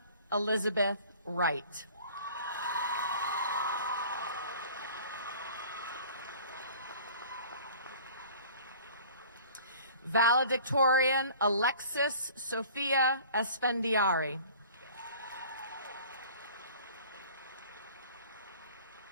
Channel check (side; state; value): both; inverted; correlation -0.47